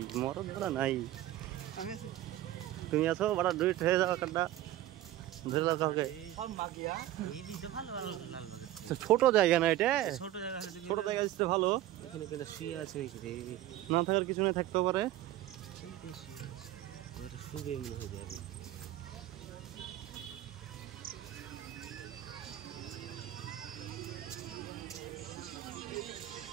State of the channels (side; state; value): left; quieter; 13.9 dB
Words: মরদ বড় নাই তুমি আছো বড় দুই ঠে যাও কাটা ধরে লাও কাউকে সব মাগিয়া এই দিতে ভালো লালবাগ ছোট জায়গা না এটা ছোট জায়গা হলে ছোট জায়গা দিতে ভালো এখানে কেন শুয়ে আছে রে না থাকার কিছু না থাকতে পারে শুনতে শুয়ে আছে ওটা শুবে মনে হয় যাবে